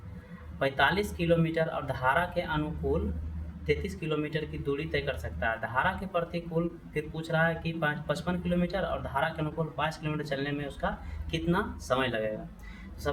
45 किलोमीटर और धारा के अनुकूल 33 किलोमीटर की दूरी तय कर सकता है। धारा के प्रतिकूल फिर पूछ रहा है कि 55 किलोमीटर और धारा के अनुकूल 5 किलोमीटर चलने में उसका कितना समय लगेगा। तो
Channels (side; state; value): both; identical; correlation 1.00